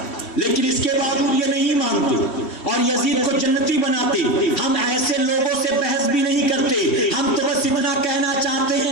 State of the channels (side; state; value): right; late; 3.1 ms